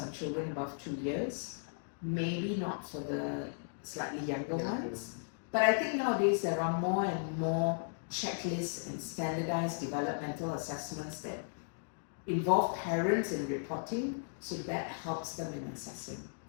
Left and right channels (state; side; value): silent; right; digital silence